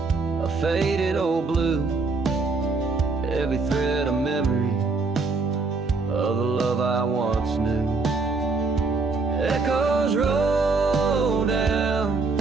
a faded old blue, every thread a memory of the love I once knew. Echoes roll down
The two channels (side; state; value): left; quieter; 4.0 dB